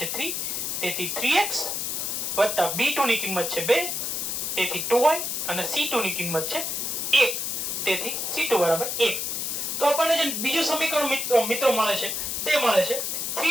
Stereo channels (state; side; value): noise; left; hiss, 2 dB below the sound